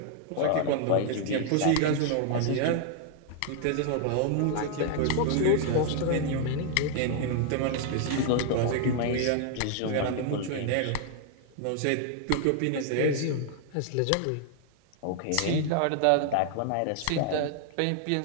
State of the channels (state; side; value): different; both; correlation 0.00